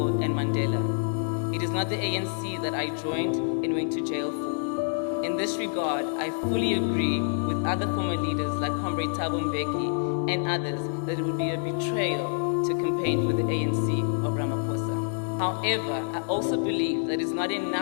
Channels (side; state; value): right; silent; digital silence